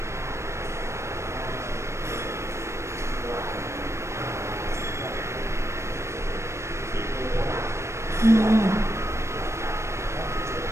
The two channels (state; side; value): late; left; 0.13 ms